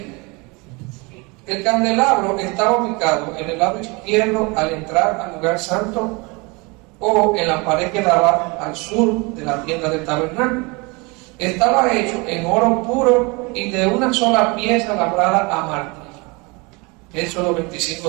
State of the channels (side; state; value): left; quieter; 27.5 dB